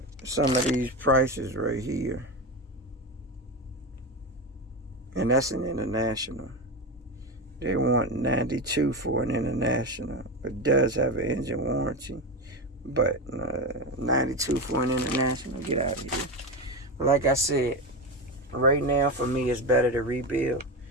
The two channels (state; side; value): normal; both; correlation 0.18